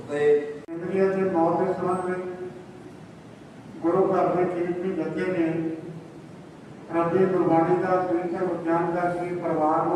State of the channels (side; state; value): both; identical; correlation 1.00